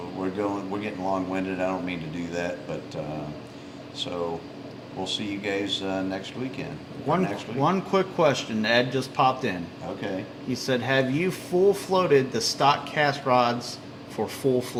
We're getting long-winded. I don't mean to do that, but so we'll see you guys next weekend. Next week. one quick question. Ed just popped in. Okay. He said, "Have you full floated the stock cast rods for full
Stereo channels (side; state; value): both; identical; correlation 1.00